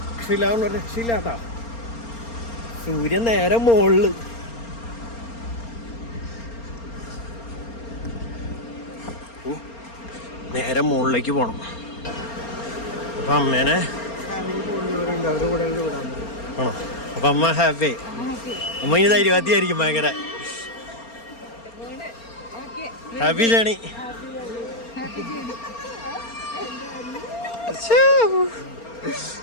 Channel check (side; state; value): right; late; 4.3 ms